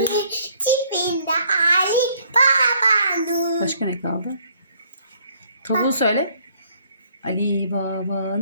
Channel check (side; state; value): both; inverted; correlation -0.63